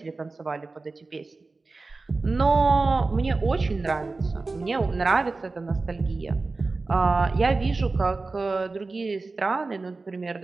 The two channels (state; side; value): quieter; left; 3.7 dB